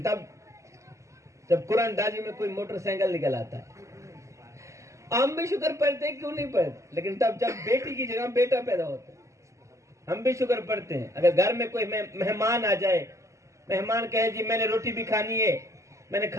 تب جب قرآن دازی میں کوئی موٹر سائیکل نکل آتا ہے. ہم بھی شکر پڑھتے ہیں, کیوں نہیں پڑھتے, لیکن تب جب بیٹی کی جگہ بیٹا پیدا ہوتا ہے ہم بھی شکر پڑھتے ہیں. اگر گھر میں کوئی مہمان آ جائے, مہمان کہے جی میں نے روٹی بھی کھانی ہے, میں نے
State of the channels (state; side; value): late; left; 0.15 ms